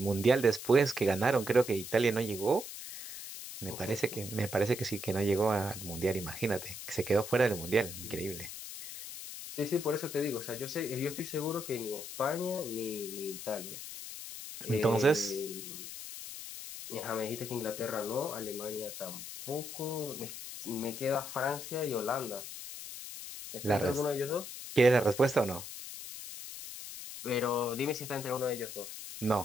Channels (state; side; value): noise; left; hiss, 10 dB below the sound